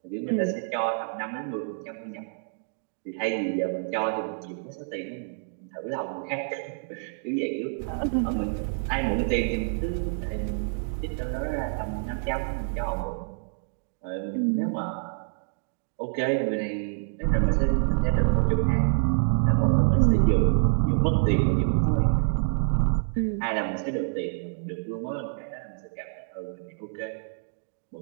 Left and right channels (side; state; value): left; silent; digital silence